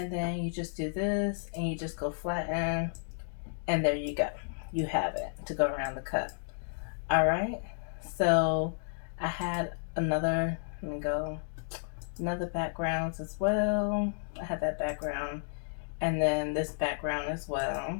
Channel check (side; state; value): right; silent; digital silence